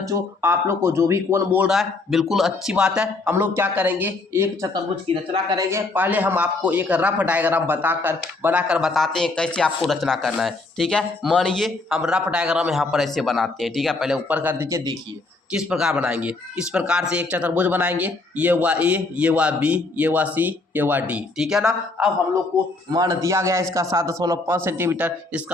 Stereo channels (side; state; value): right; quieter; 3.4 dB